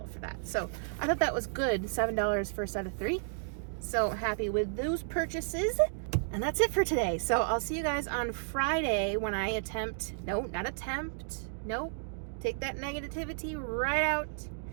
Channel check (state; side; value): silent; left; digital silence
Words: for that. So I thought that was good. $7 for a set of 3. So happy with those purchases. And that's it for today. So I'll see you guys on Friday when I take that negativity right out.